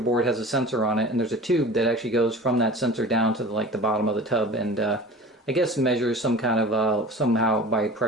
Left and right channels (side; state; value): both; normal; correlation 0.39